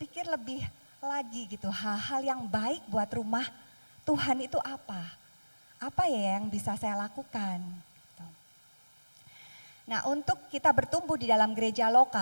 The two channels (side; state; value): both; inverted; correlation -1.00